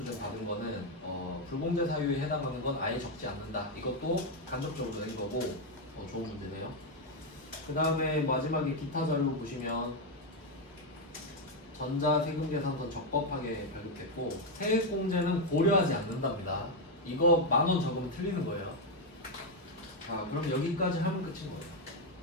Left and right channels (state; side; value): normal; both; correlation 0.04